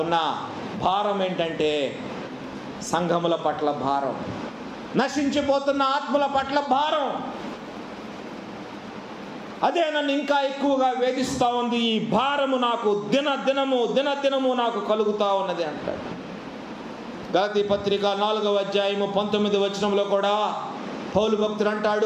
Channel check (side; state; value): both; identical; correlation 1.00